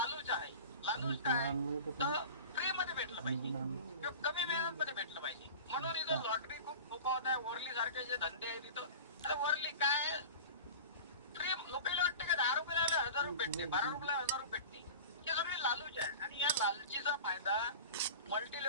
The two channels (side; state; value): both; inverted; correlation -0.36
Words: आहे. लालूच काय तर फ्री मध्ये भेटलं पाहिजे किंवा कमी मेहनत मध्ये भेटलं पाहिजे. म्हणून इथं लॉटरी खूप फोकावत आहे. वर्ली सारखे जे धंदे आहेत तिथं, अरे वर्ली काय फ्री, लोकांना वाटतं का 10 रुपयाला 1,000 रुपये भेटते, 12 रुपयाला 1,000 रुपये भेटते. हे सगळे लालूच आहे. आणि या लालचीचा फायदा मल्टी